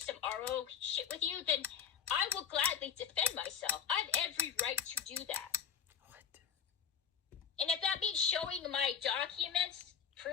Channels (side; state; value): right; quieter; 7.5 dB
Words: RO shit with you, then I will gladly defend myself. I have every right to do that. What? And if that means showing my documents,